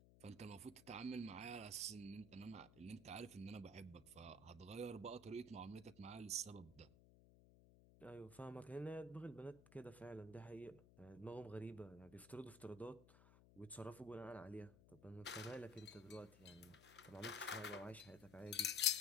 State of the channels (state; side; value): noise; left; hum, 20 dB below the sound